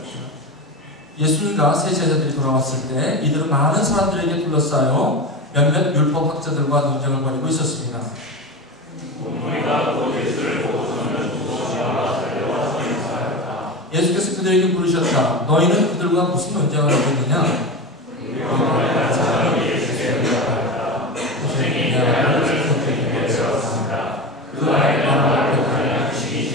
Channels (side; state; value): both; normal; correlation 0.23